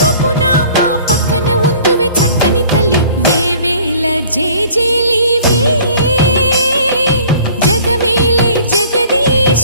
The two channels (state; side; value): inverted; both; correlation -0.51